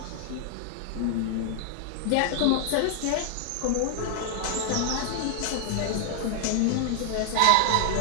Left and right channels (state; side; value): different; both; correlation 0.00